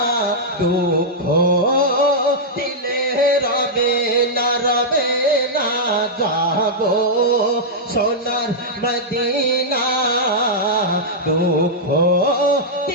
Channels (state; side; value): normal; both; correlation -0.08